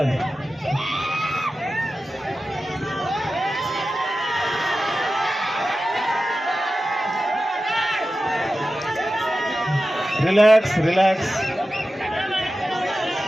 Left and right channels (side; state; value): both; normal; correlation 0.93